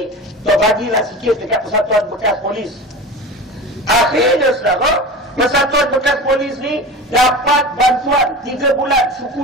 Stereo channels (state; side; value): normal; both; correlation 0.31